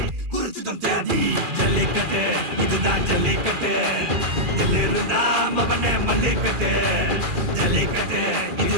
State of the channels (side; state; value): left; late; 2.4 ms